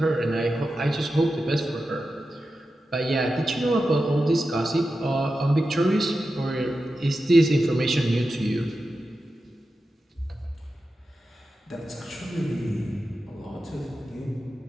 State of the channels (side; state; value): both; normal; correlation 0.91